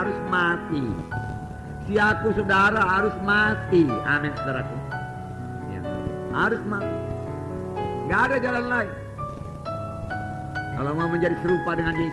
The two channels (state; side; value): identical; both; correlation 1.00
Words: mati. Si aku saudara harus mati. Amin saudaraku. Ya, harus mati. Gak ada jalan lain. Kalau mau menjadi serupa dengan